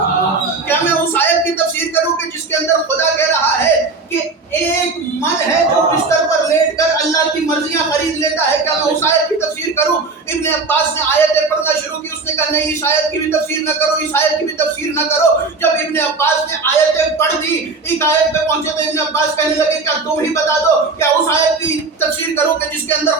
کیا میں اس آیت کی تفسیر کروں کہ جس کے اندر خدا کہہ رہا ہے کہ ایک من ہے جو بستر پر لیٹ کر اللہ کی مرضیاں خرید لیتا ہے. کیا میں اس آیت کی تفسیر کروں؟ ابن عباس نے آیتیں پڑھنا شروع کی. اس نے کہا نہیں، اس آیت کی بھی تفسیر نہ کرو، اس آیت کی بھی تفسیر نہ کرو. جب ابن عباس نے آیتیں پڑھ دی، ایک آیت پہ پہنچے تو ابن عباس کہنے لگے کیا تم ہی بتا دو، کیا اس آیت کی تفسیر کرو کہ جس کے اندر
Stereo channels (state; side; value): quieter; left; 3.9 dB